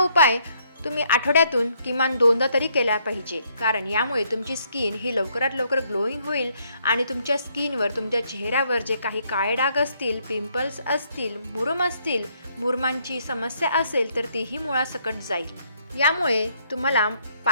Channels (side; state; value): both; inverted; correlation -0.71